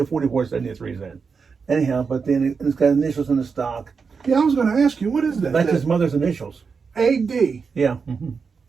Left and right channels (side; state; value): left; quieter; 5.4 dB